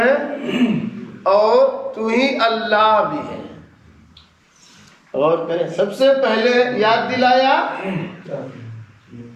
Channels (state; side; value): identical; both; correlation 1.00